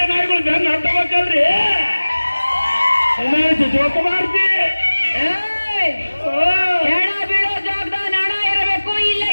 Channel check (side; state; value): both; inverted; correlation -1.00